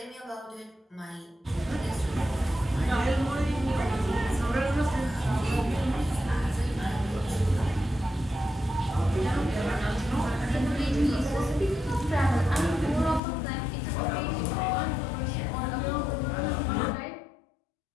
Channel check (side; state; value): right; drops out; at 13.2 s